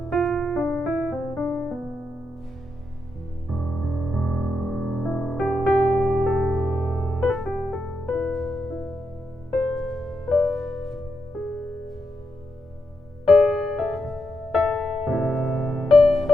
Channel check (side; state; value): both; normal; correlation 0.84